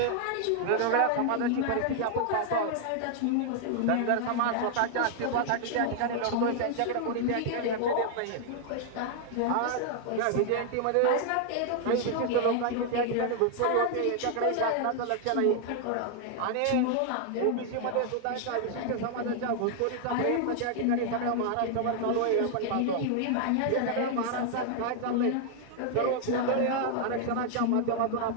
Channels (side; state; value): both; different; correlation 0.00